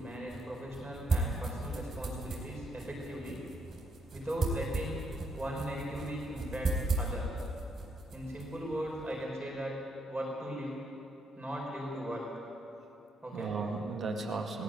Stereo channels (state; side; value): normal; both; correlation 0.76